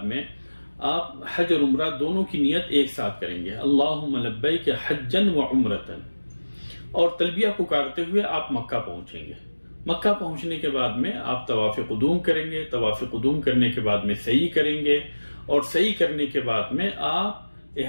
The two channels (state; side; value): inverted; both; correlation -1.00